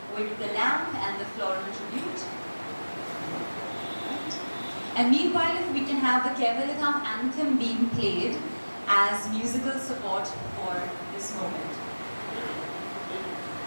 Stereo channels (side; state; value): both; inverted; correlation -1.00